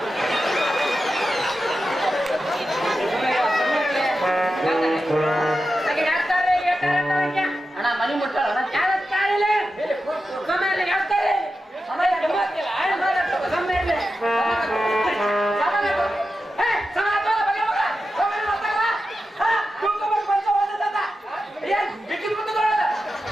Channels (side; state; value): both; normal; correlation 0.91